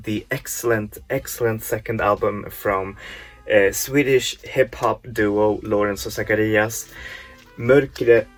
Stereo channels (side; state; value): both; identical; correlation 1.00